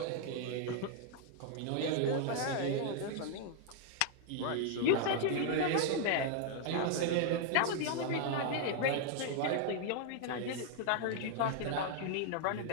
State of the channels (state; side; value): different; both; correlation 0.00